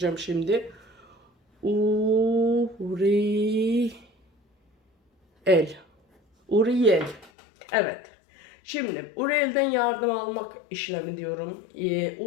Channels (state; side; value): drops out; right; at 7.3 s